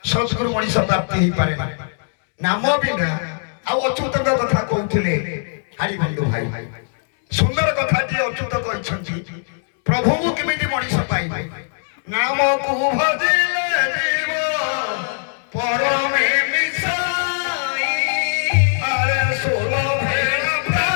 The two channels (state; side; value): silent; right; digital silence